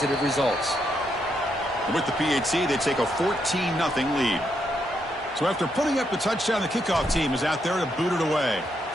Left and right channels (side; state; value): both; normal; correlation 0.79